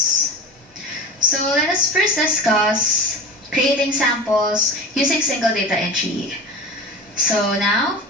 So let us first discuss creating samples using single data entry. So now,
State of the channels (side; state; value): both; normal; correlation 0.32